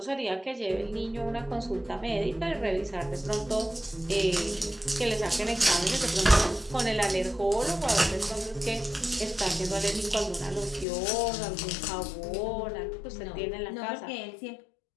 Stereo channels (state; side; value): drops out; right; at 10.9 s